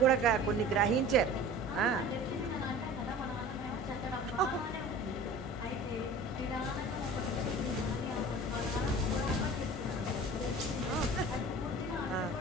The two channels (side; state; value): both; normal; correlation 0.41